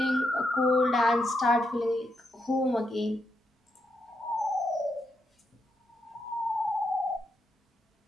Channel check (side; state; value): both; normal; correlation 0.81